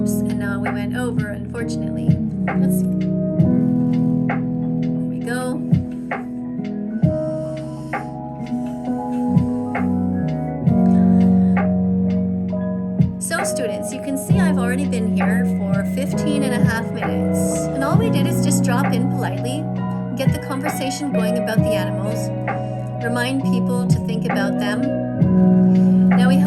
and now we went over, unfortunately. Let's see. There we go. So students, you can see I've already been here for 15.5 minutes. And all we did is just drop in politely, get the conversation going about the animals, remind people to think about them. Now we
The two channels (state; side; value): identical; both; correlation 1.00